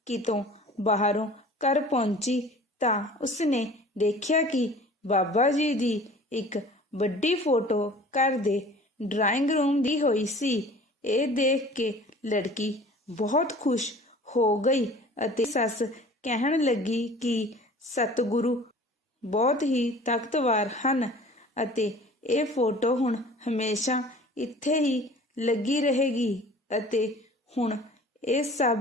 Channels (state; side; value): normal; both; correlation 0.46